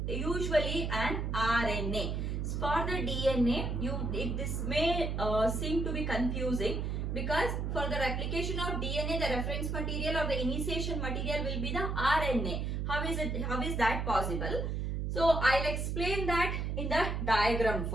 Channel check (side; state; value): right; noise; hum, 1 dB below the sound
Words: usually an RNA. For the DNA, this may seem to be confusing because for the replication of DNA, the reference material or the initiation material will be the RNA. How is that possible? So I'll explain that in the diagram